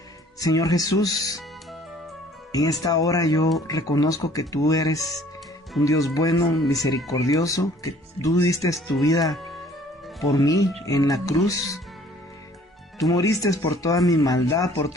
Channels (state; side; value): normal; both; correlation 0.55